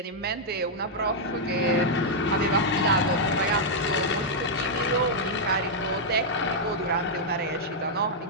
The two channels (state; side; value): normal; both; correlation -0.05